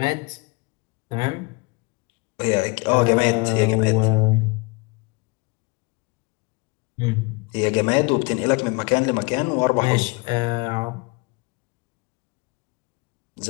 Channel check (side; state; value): right; quieter; 28.0 dB